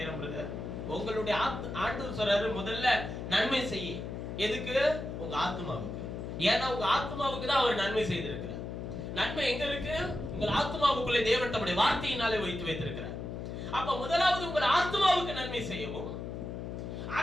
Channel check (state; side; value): noise; left; hum, 6 dB below the sound